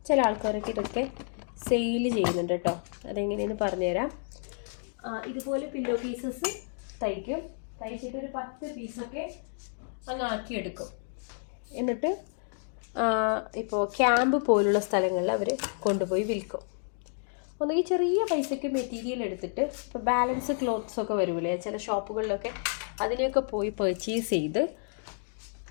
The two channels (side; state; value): right; silent; 58 dB below the other